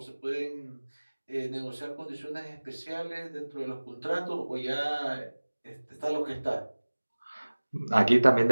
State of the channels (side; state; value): both; inverted; correlation -1.00